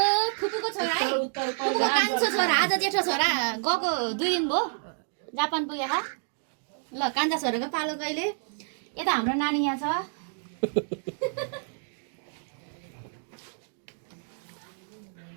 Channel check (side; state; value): left; silent; digital silence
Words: फुपूको छोरा है फुपूको कान्छो छोरा आज जेठो छोरा गएको 2 दिन भयो जापान पुगेका ल कान्छा छोराको पालो कहिले यता हाम्रो नानी यहाँ छ